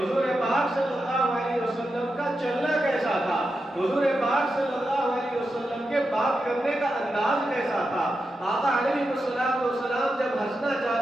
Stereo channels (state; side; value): normal; both; correlation 0.88